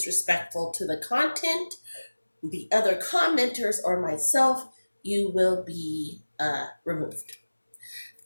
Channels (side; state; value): both; inverted; correlation -1.00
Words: to the content, the other commenters, or myself, you will be removed.